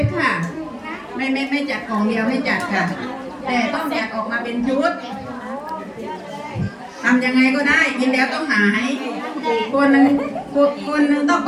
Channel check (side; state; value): both; identical; correlation 1.00